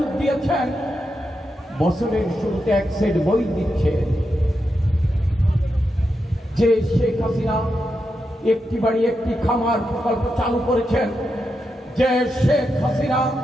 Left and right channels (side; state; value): both; normal; correlation 0.86